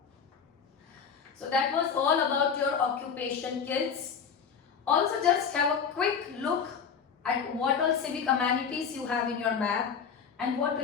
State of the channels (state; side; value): quieter; right; 6.6 dB